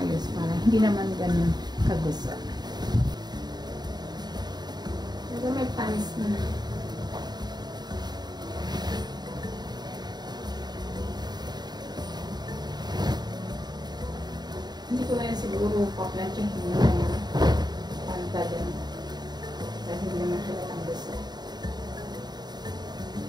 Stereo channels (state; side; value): late; left; 0.20 ms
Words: para hindi naman ganun kagusot. Pero may pants na. Hindi ko na yan siguro paplantsahin na yung panta din. Dahil hindi naman halatang gusot.